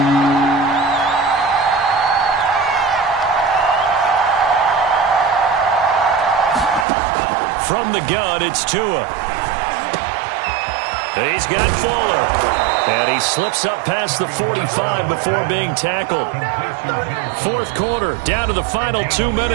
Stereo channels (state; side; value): drops out; left; at 6.9 s